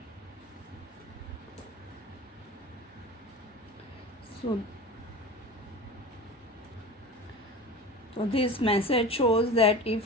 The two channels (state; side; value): normal; both; correlation 0.32